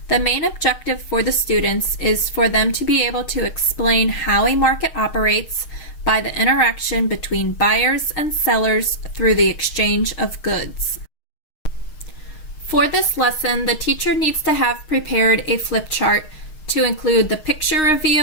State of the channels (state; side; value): late; right; 6.5 ms